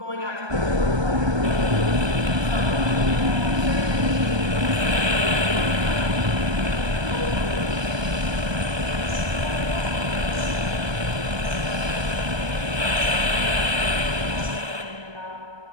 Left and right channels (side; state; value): left; late; 1.2 ms